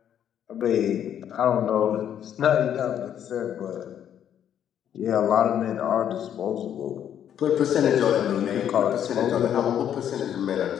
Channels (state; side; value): quieter; right; 9.7 dB